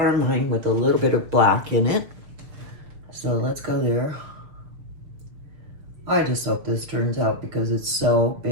with a little bit of black in it. So let's go there. I just hope this turns out because it's so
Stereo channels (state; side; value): late; left; 6.6 ms